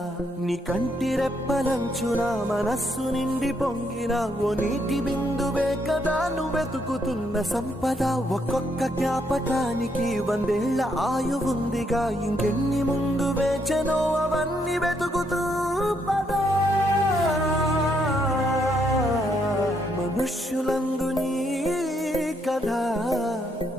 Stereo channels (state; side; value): normal; both; correlation 0.75